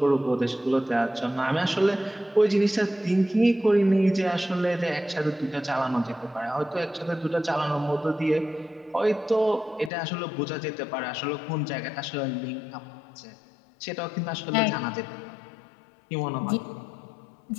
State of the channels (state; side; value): drops out; right; at 9.9 s